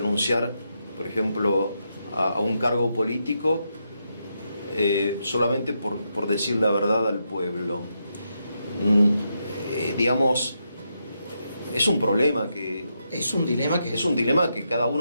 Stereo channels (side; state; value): both; inverted; correlation -0.82